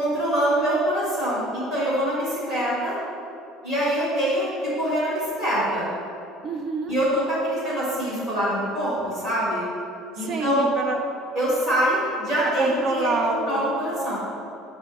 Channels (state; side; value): normal; both; correlation 0.51